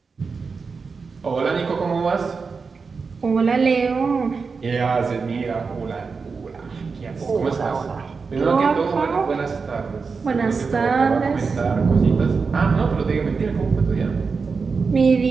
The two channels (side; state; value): left; quieter; 4.9 dB